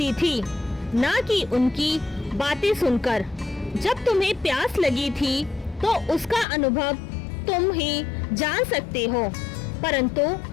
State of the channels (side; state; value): right; drops out; at 6.5 s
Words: थी, ना कि उनकी बातें सुनकर। जब तुम्हें प्यास लगी थी तो उसका अनुभव तुम ही जान सकते हो, परंतु